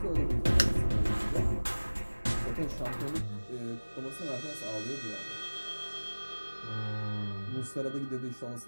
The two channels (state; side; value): inverted; both; correlation -1.00